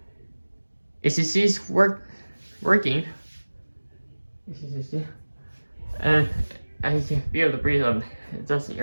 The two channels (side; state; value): both; inverted; correlation -1.00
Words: As you see, it's working. As you see, and you can feel the breeze of it. It doesn't